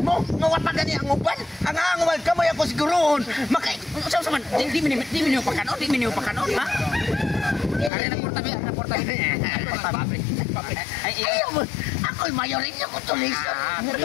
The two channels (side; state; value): right; drops out; at 7.9 s